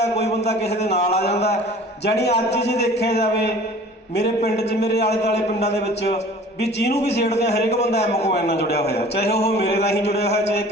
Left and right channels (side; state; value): both; normal; correlation 0.46